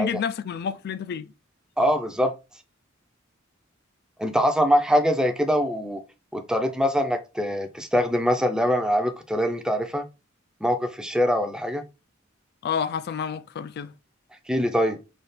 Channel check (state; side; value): normal; both; correlation 0.74